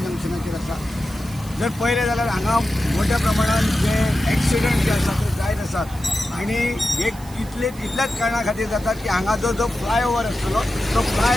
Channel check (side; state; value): right; noise; hiss, 21 dB below the sound